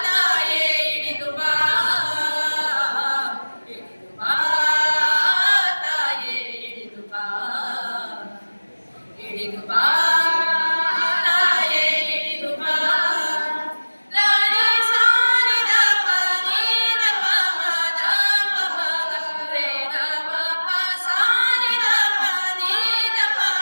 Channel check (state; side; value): inverted; both; correlation -1.00